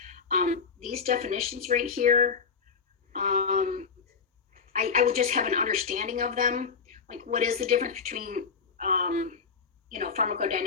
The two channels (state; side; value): quieter; right; 5.7 dB